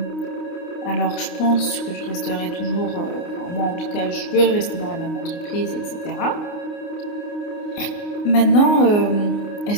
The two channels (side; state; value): right; late; 29 ms